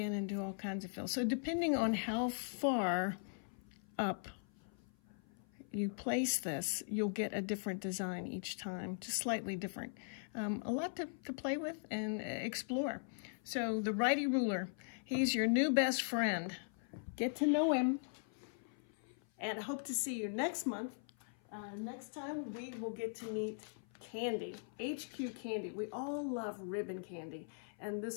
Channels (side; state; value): right; silent; 51 dB below the other